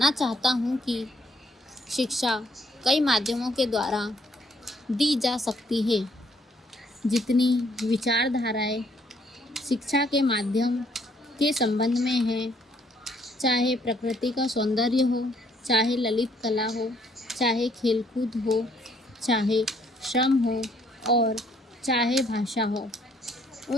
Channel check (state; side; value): normal; both; correlation 0.66